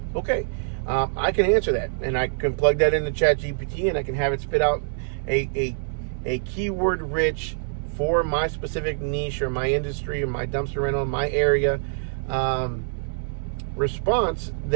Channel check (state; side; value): silent; left; 62 dB below the other